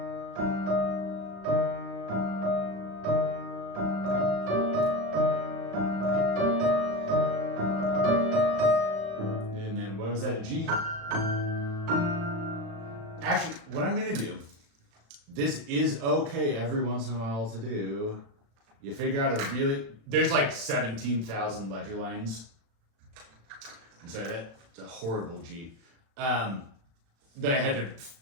And then what was that? A G? Actually, what I'm gonna do. This is okay every once in a while to do. You figure out a really. There's like 17,000 ledger lines. I'm sorry, that's a horrible G. That I had to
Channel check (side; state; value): left; late; 36 ms